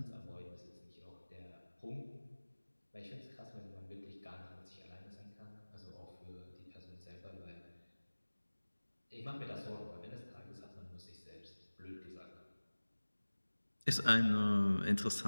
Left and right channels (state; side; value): inverted; both; correlation -1.00